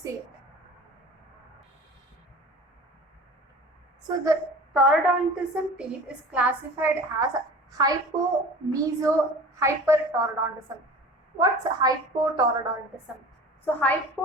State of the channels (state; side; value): normal; both; correlation 0.40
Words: So the taurodontism teeth is classified as hypo, meso, hypertaurodontism. What's hypotaurodontism? So